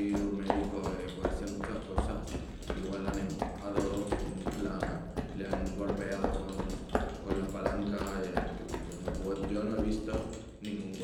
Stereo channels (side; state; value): both; identical; correlation 1.00